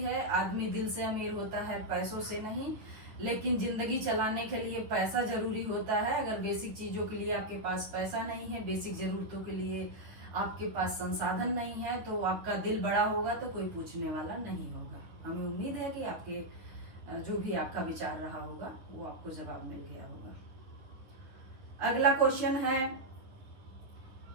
है, आदमी दिल से अमीर होता है, पैसों से नहीं। लेकिन जिंदगी चलाने के लिए पैसा जरूरी होता है। अगर बेसिक चीजों के लिए आपके पास पैसा नहीं है, बेसिक जरूरतों के लिए आपके पास संसाधन नहीं है, तो आपका दिल बड़ा होगा तो कोई पूछने वाला नहीं होगा। हमें उम्मीद है कि आपके जो भी आपका विचार रहा होगा वो आपको जवाब मिल गया होगा। अगला क्वेश्चन है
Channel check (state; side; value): late; left; 9.7 ms